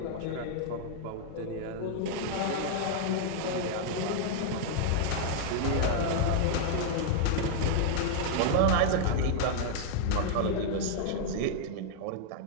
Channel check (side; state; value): both; different; correlation -0.01